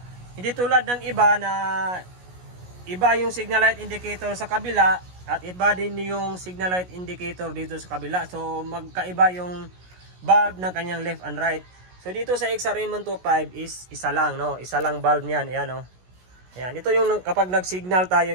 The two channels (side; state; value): left; late; 16 ms